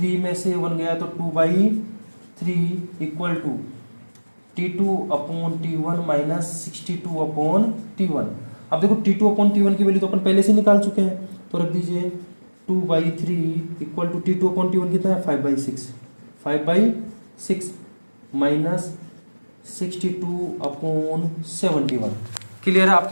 में से 1 गया तो 2/3 equal to T2/T1 minus 62/T1। अब देखो T2/T1 की वैल्यू तो अपन पहले से निकाल चुके हैं, तो रख दीजिए 2/3 इक्वल टू T2/T1 कितना है 5/6, 5/6 माइनस 62/71। क्लियर है,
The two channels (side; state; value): both; inverted; correlation -1.00